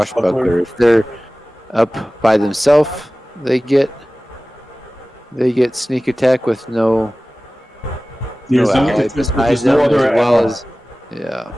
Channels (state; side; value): normal; both; correlation 0.97